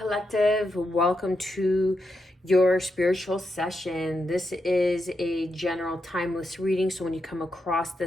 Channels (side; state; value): both; normal; correlation 0.84